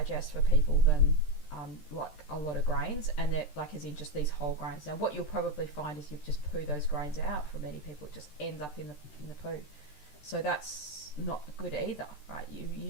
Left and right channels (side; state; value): right; late; 13 ms